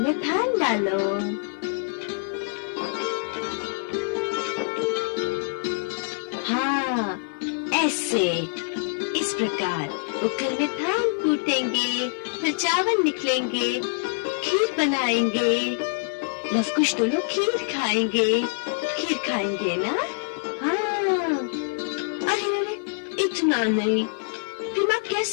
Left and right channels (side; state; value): right; silent; 61 dB below the other